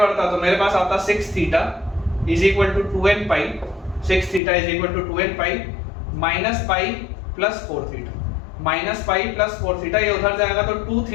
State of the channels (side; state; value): right; drops out; at 4.4 s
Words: तो मेरे पास आता 6 theta is equal to 2n pi, 6 theta is equal to 2n pi minus pi plus 4 theta, minus pi plus 4 theta, ये उधर जाएगा तो 2